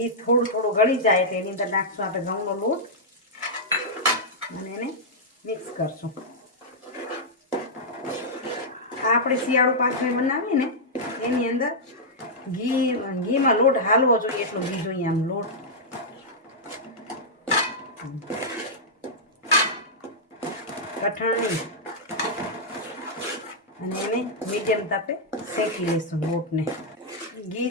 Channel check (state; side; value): normal; both; correlation -0.08